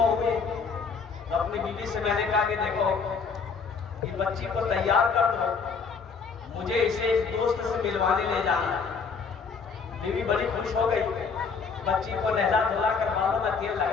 ہوئی تو اپنی بیوی سے میں نے کہا کہ دیکھو یہ بچی کو تیار کر دو، مجھے اسے ایک دوست سے ملوانے لے جانا ہے۔ بیوی بڑی خوش ہو گئی، بچی کو نہلا دھلا کر بالوں میں تیل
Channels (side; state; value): right; quieter; 5.4 dB